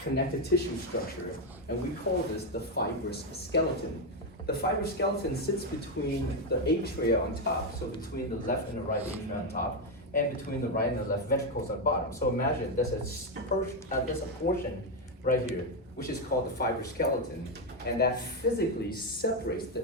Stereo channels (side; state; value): both; normal; correlation 0.06